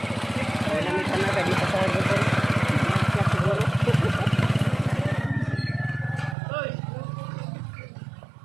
Sana ka dito sa order ko.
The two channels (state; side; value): drops out; left; at 6.4 s